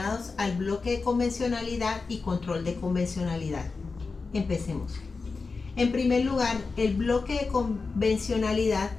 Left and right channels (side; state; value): right; quieter; 4.3 dB